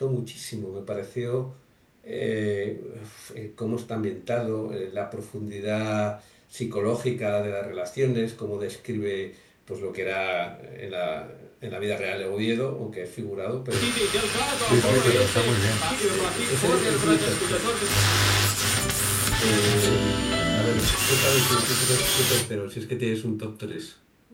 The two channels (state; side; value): identical; both; correlation 1.00